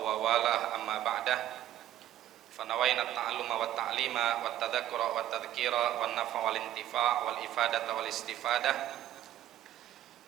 wa walah, amma ba'dah. Fanawayna at-ta'alluma wa at-ta'lima wa at-tadhakkura wa at-tadhkira wa an-naf'a wal intifa' wal ifadata wal istifadah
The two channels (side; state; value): left; quieter; 12.6 dB